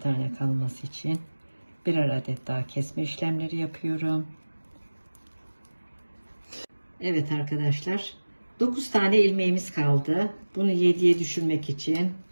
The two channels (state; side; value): inverted; both; correlation -1.00